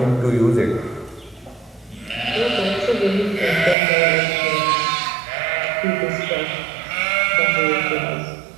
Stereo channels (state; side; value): drops out; left; at 3.8 s